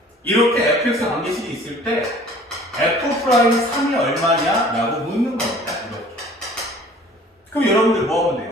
이렇게 fx 관계식이 있을 때 f'3이 얼마냐? 라고 묻는 겁니다. 이렇게. 그럼 여러분들 뭐 하면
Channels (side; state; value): both; normal; correlation 0.50